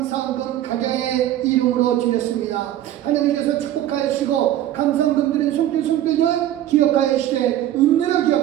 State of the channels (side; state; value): left; quieter; 12.6 dB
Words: 각양의 이름으로 드렸습니다. 하나님께서 축복하여 주시고 감사헌금 드린 손길들 기억하여 주시되 은혜로